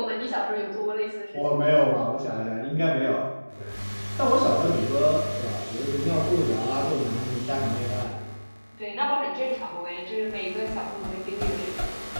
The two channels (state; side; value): inverted; both; correlation -1.00